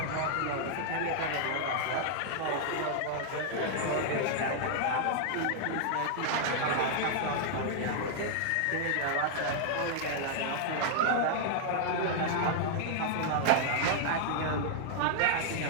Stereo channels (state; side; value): different; both; correlation -0.01